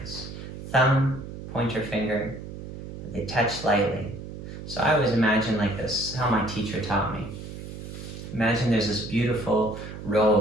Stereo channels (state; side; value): noise; right; hum, 10 dB below the sound